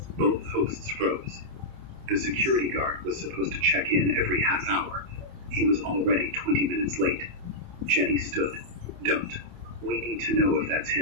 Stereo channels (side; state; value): left; late; 28 ms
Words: Both hosts froze. The security guard was supposed to check in every half hour. He was already 20 minutes late. Jenny stood. Don't. We need to know if that's